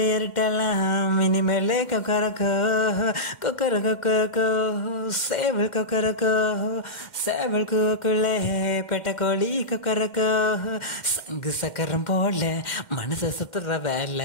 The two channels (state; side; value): late; right; 2.1 ms